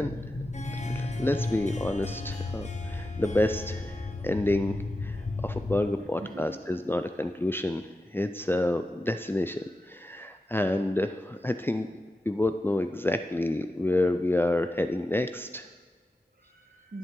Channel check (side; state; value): both; normal; correlation 0.90